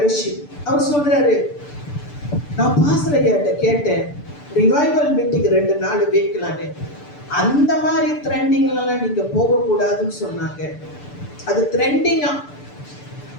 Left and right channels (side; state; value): right; late; 6.9 ms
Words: அவர் சொல்றாரு, நான் பாஸ்டர் ஐயாட்ட கேட்டேன், ரிவைவல் மீட்டிங் 2 நாள் வைக்கலான்னு. அந்த மாதிரி ட்ரெண்டிங்லாம் நீங்க போகக்கூடாதுன்னு சொன்னாங்க. அது ட்ரெண்டிங்கா.